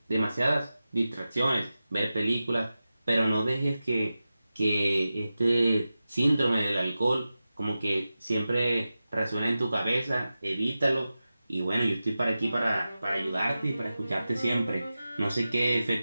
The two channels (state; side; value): inverted; both; correlation -0.94